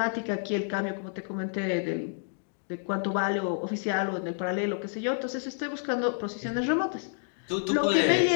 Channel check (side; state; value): right; silent; digital silence